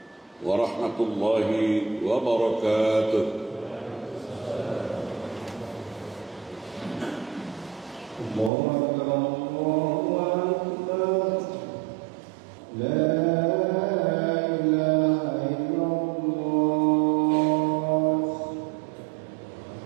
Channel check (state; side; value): drops out; left; at 8.5 s